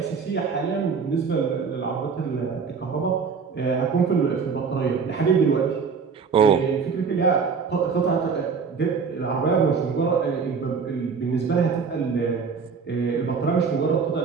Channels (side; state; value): left; quieter; 5.5 dB